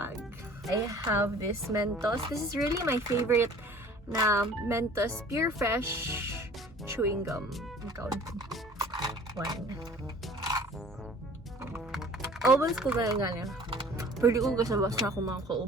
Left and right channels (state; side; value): normal; both; correlation 0.49